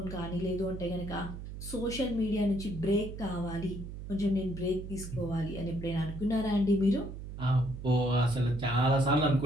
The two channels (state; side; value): noise; right; hum, 9 dB below the sound